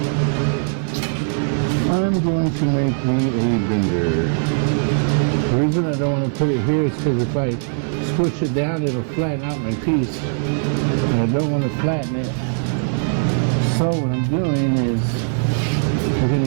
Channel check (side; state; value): left; silent; digital silence